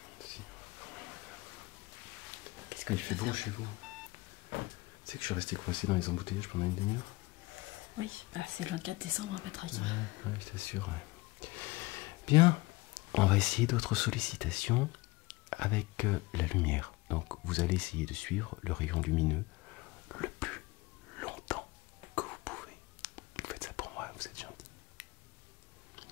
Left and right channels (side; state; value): right; quieter; 22.0 dB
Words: il fait bon chez vous. Tu sais que je suis resté coincé dans les embouteillages pendant une demi-heure. Oui, bah, c'est le 24 décembre, hein, Patrick. Ouais, je t'assure. Ouais. Bien, on va essayer d'autres sollicitations avec la lumière. Donc vous allez essayer de suivre le rayon lumineux le plus longtemps que vous pouvez. Vous faites ça pour moi, vous êtes gentil.